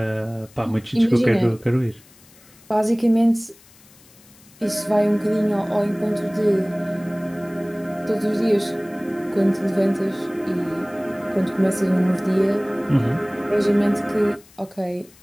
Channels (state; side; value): noise; left; hiss, 26 dB below the sound